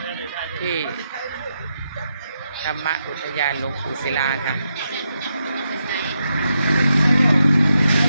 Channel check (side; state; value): both; inverted; correlation -0.84